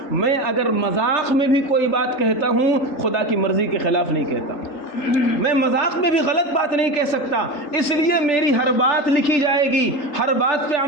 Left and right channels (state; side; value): late; right; 3.3 ms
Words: میں اگر مذاق میں بھی کوئی بات کہتا ہوں خدا کی مرضی کے خلاف نہیں کہتا، میں مذاق میں بھی غلط بات نہیں کہہ سکتا، اس لیے میری ہر بات لکھی جائے گی، ہر بات پہ